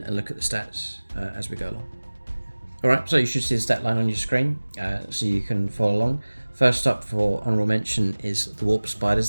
and look at the stats as we go along. Alright, so you should see the stat line on your screen, so you can follow along. First up for honorable mention is the Warp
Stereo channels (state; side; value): inverted; both; correlation -1.00